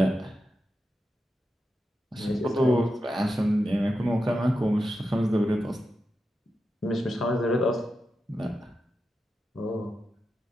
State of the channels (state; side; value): normal; both; correlation 0.89